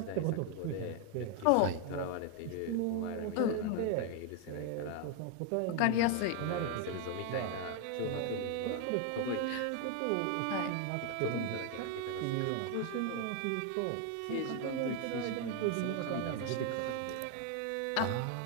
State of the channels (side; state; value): both; different; correlation 0.00